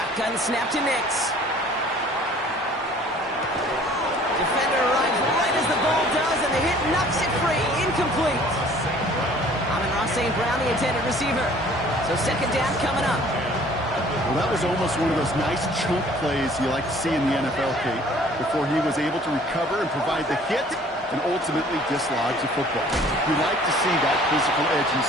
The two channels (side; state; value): both; normal; correlation 0.53